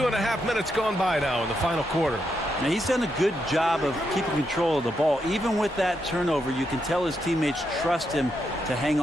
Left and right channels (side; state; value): both; normal; correlation 0.81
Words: minutes gone by now in the final quarter. Now, he's done a good job of keeping control of the ball. Even with that turnover, you can tell his teammates trust him to hang